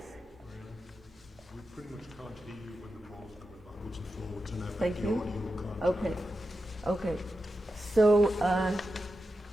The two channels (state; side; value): normal; both; correlation 0.90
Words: We pretty much can't hear you when the ball's going backwards and forwards, and Thank the you. audio can't. Okay. So